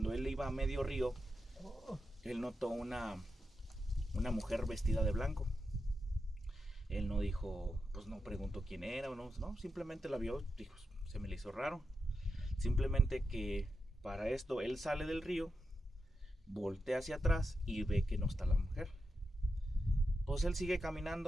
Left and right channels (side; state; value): both; normal; correlation 0.88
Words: él iba a medio río, él notó una mujer vestida de blanco. Él no dijo, pues no preguntó quién era o no, simplemente la vio, dijo, se me le hizo raro. Simplemente que para esto él sale del río, voltea hacia atrás y ve que no está la mujer. Pues él sigue